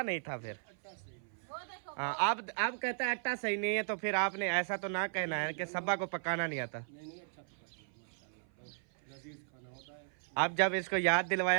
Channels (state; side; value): silent; left; 54 dB below the other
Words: नहीं था फिर। वो देखो हाँ अब कहता है आटा सही नहीं है, तो फिर आपने ऐसा तो ना कहना है कि सब्बा को पकाना नहीं आता। अब जब इसको याद